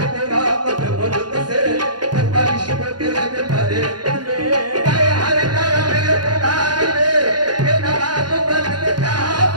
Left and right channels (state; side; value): late; left; 0.70 ms